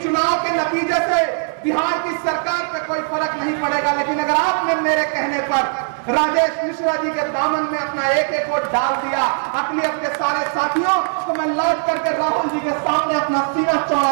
चुनाव के नतीजे से बिहार की सरकार पे कोई फर्क नहीं पड़ेगा, लेकिन अगर आपने मेरे कहने पर राजेश मिश्रा जी के दामन में अपना एक एक वोट डाल दिया अकलियत के सारे साथियों, तो मैं लौट करके राहुल जी के सामने अपना सीना चौड़ा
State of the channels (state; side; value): silent; left; digital silence